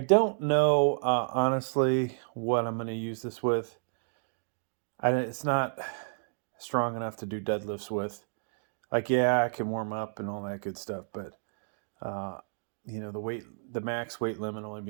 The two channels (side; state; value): left; silent; digital silence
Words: don't know, honestly, what I'm going to use this with. It's not strong enough to do deadlifts with. Like, yeah, I can warm up and all that good stuff, but, the max weight limit only